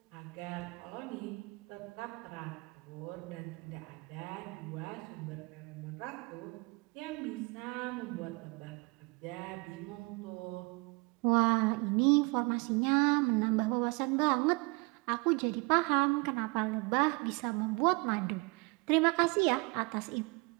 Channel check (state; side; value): quieter; left; 28.2 dB